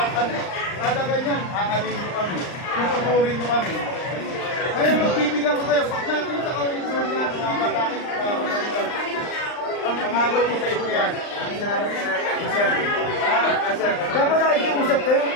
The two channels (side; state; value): right; late; 39 ms